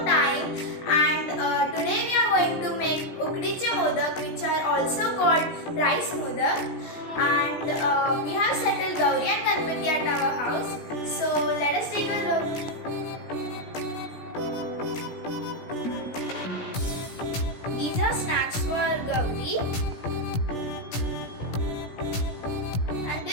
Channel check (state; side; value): late; right; 17 ms